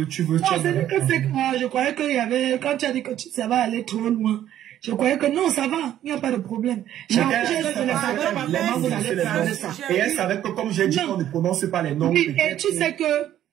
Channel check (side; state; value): left; quieter; 11.7 dB